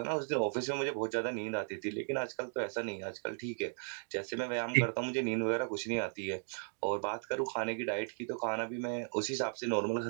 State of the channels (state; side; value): silent; left; digital silence